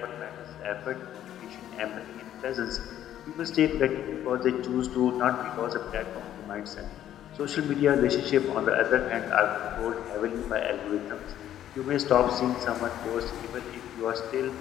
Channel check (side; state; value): right; quieter; 11.4 dB